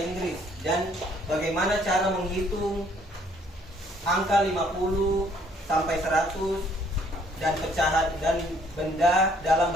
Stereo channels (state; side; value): normal; both; correlation 0.63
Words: dan bagaimana cara menghitung angka 50 sampai 100 dan pecahan dan benda dalam